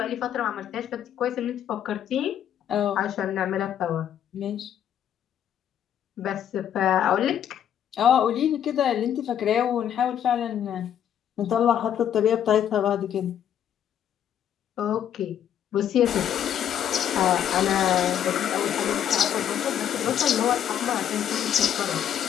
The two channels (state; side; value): quieter; right; 9.7 dB